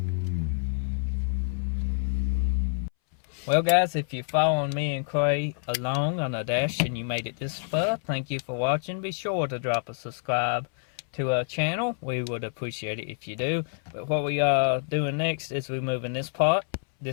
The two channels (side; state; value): right; silent; 60 dB below the other